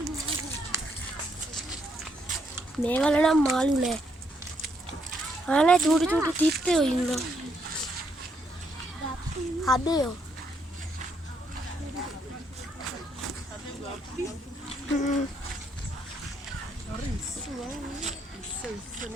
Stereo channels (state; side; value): normal; both; correlation 0.74